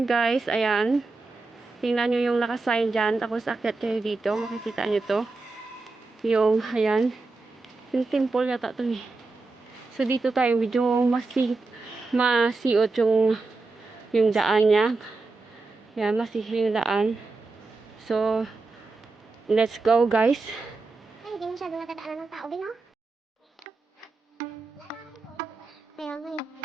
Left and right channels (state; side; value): quieter; left; 3.7 dB